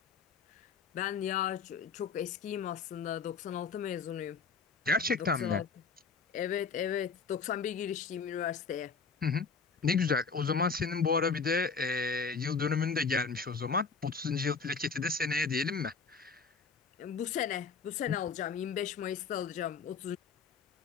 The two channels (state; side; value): quieter; right; 5.1 dB